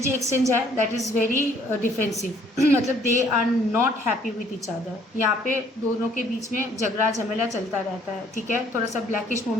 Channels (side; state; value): both; normal; correlation 0.61